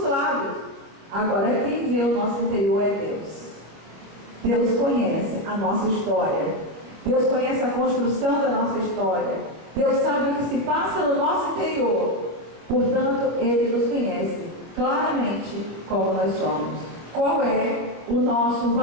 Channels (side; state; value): left; late; 26 ms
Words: lábios. Agora quem vê o nosso interior é Deus. Deus conhece a nossa história. Deus conhece a construção da nossa história. Deus sabe o que se passa no nosso interior. Portanto, Ele nos conhece claramente como nós somos. Qual é o nosso